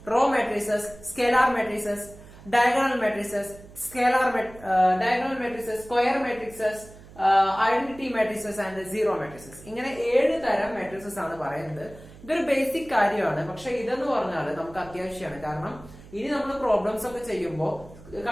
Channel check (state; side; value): noise; right; hum, 20 dB below the sound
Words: row matrices, scalar matrices, diagonal matrices, diagonal matrices, square matrices, identity matrices and zero matrices. ഇങ്ങനെ 7 തരം മെട്രിസസ് ആണ് പറയുന്നത്. ഇതൊരു ബേസിക് കാര്യമാണ്, പക്ഷെ ഇതെന്ന് പറഞ്ഞാൽ നമുക്ക് അത്യാവശ്യമാണ്. കാരണം ഇനി നമ്മൾ പ്രോബ്ലംസ് ഒക്കെ ചെയ്യുമ്പോൾ